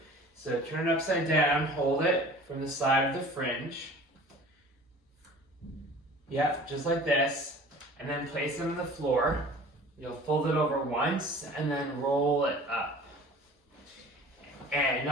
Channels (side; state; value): both; normal; correlation 0.45